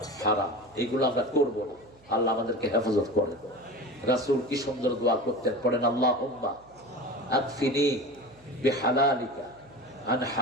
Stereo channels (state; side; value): noise; right; hum, 28 dB below the sound